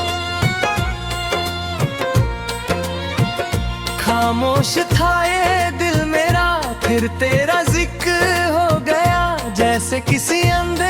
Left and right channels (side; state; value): both; identical; correlation 1.00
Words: खामोश था ये दिल मेरा, फिर तेरा जिक्र हो गया, जैसे किसी